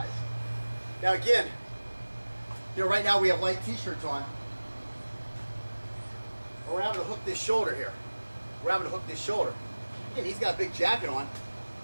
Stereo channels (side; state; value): both; inverted; correlation -1.00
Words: Now again, you know, right now we have light t-shirts on. We're having to hook this shoulder here. We're having to hook this shoulder. Again, he's got a big jacket on.